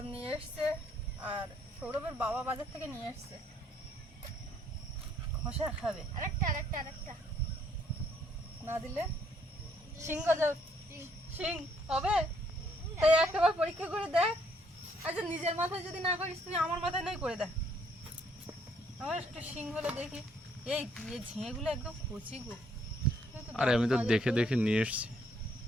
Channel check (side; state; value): both; normal; correlation 0.68